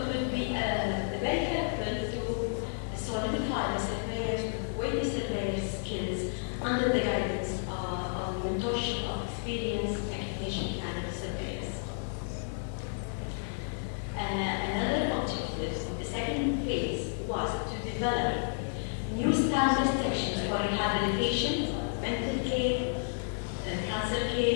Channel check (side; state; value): right; silent; digital silence